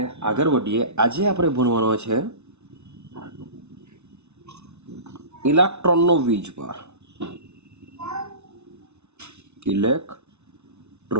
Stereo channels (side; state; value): left; late; 0.81 ms